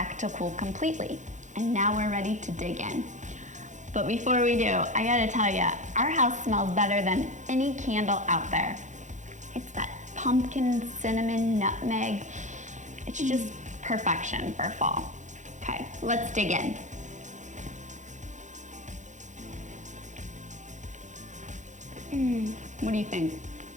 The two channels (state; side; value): late; left; 0.35 ms